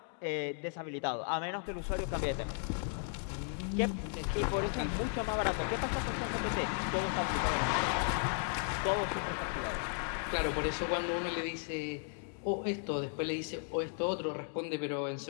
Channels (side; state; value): right; silent; 54 dB below the other